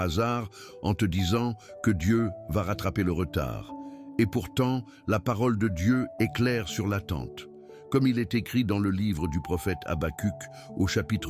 en te disant que Dieu va rattraper le retard. Et pourtant, la parole de Dieu est claire sur l'attente. Comme il est écrit dans le livre du prophète Habacuc au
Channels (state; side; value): identical; both; correlation 1.00